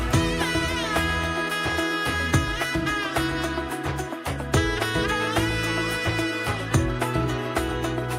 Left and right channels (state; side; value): identical; both; correlation 1.00